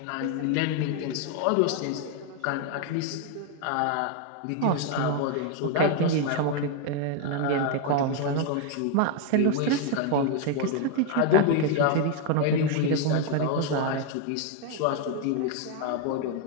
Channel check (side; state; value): both; different; correlation 0.01